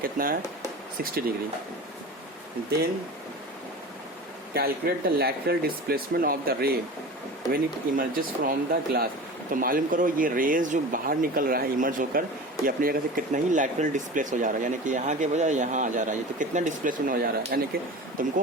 कितना है 60 degree. Then calculate the lateral displacement of the ray when it emerges from the glass. तो मालूम करो ये रेज जो बाहर निकल रहा है इमर्ज होकर ये अपनी जगह से कितना ही लैटरल डिस्प्लेस हो जा रहा है, यानी कि यहाँ के बजाय यहाँ आ जा रहा है, तो कितना डिस्प्लेसमेंट हो जा रहा है, यानी कि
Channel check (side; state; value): both; normal; correlation 0.34